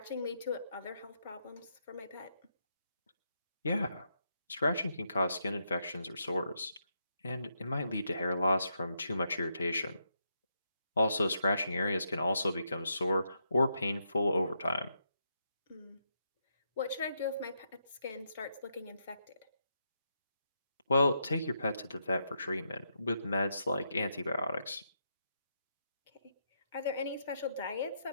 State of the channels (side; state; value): both; inverted; correlation -0.81